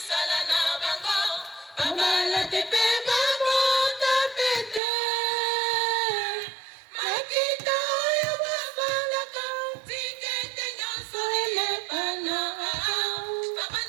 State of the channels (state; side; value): drops out; left; at 4.8 s